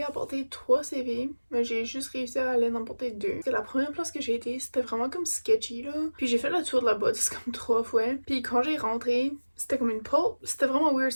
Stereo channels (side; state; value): both; inverted; correlation -1.00